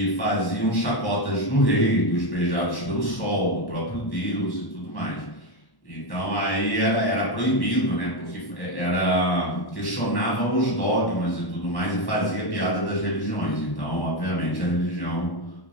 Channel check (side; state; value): right; late; 1.1 ms